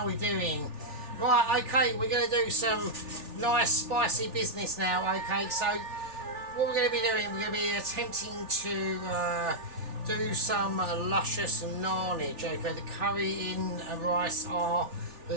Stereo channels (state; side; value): late; left; 3.4 ms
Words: are we doing? Right, okay, we're going to do some nice spicy business now, okay, so what we're going to be doing, we're going to be attempting to do some luscious nannage, okay, the curry in rice are